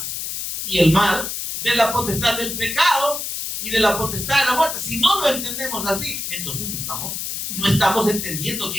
y el mal, de la potestad del pecado y de la potestad de la muerte. Si no lo entendemos así, entonces no estamos entendiendo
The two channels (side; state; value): left; noise; hiss, 5 dB below the sound